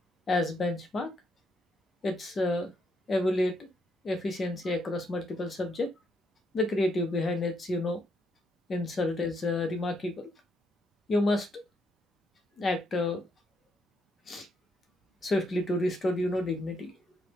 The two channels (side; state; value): both; normal; correlation 0.76